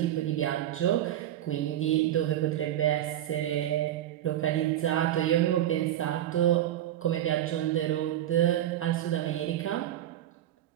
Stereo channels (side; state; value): left; quieter; 12.2 dB